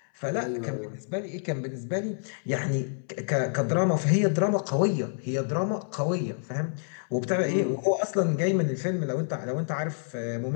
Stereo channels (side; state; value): right; silent; 59 dB below the other